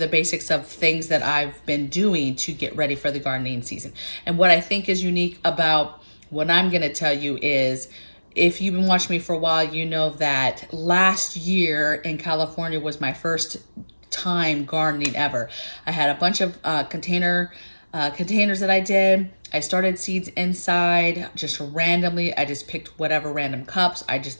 basics of things that I've been doing to get ready for the gardening season. And what I think is unique about what I'm going to tell you is, if you've been watching me for a while, you know that last year in California was my first time gardening ever. I had a bunch of containers that I did. I started seeds inside just randomly. I just picked whatever random cups. I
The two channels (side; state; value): both; inverted; correlation -1.00